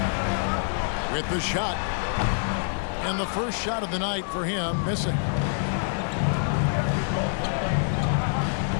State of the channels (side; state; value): right; silent; 61 dB below the other